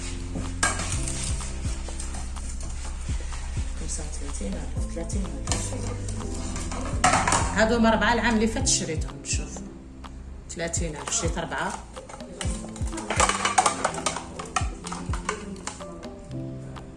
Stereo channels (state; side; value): identical; both; correlation 1.00